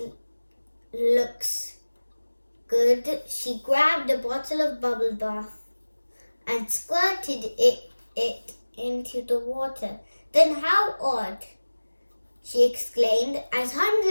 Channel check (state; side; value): inverted; both; correlation -1.00